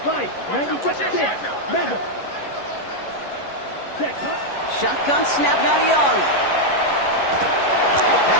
Fight 96. Mega. Check, Shotgun snap now to Young. That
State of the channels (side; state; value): right; late; 11 ms